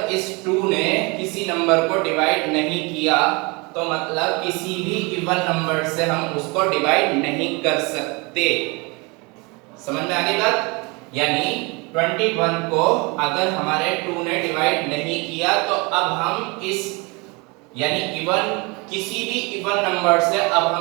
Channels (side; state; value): left; quieter; 27.9 dB